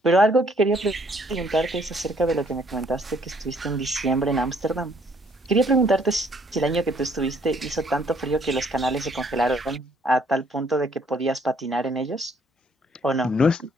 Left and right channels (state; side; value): normal; both; correlation 0.64